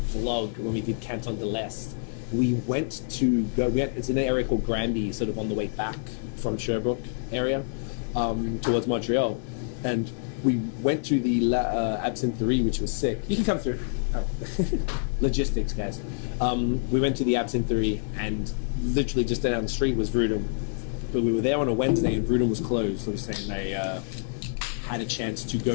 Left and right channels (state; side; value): silent; right; digital silence